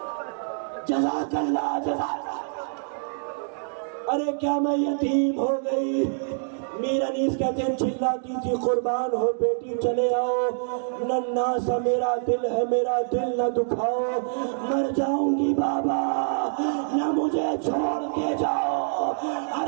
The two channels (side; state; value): left; silent; digital silence